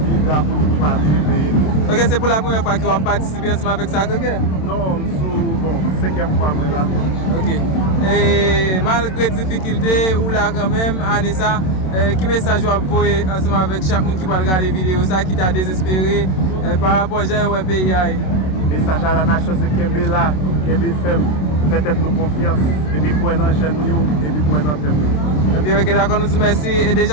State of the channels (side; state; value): right; late; 27 ms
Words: vivre, pour nous pas vivre. Ok, c'est pour la première fois que vous participez ensemble avec ça, ok? Non, bon, 5e fois moi là. Ok. Et malgré les difficultés, ou là quand même, Anissa, qui message vous envoyez ensemble avec chaque monde qui va regarder la vidéo, ça qui t'a désespéré par rapport à pays? Message à la nation, c'est Kembe là, Kembe femme, faites nous confiance, et puis pour un jeune et puis pour un thème. Et puis ok, d'accord, nous vous merci et